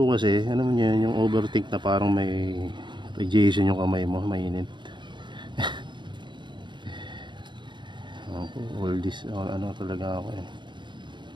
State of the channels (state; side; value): late; left; 0.23 ms